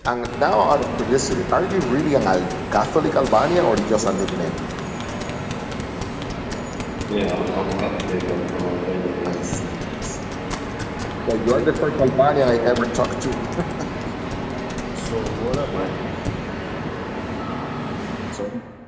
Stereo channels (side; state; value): both; identical; correlation 1.00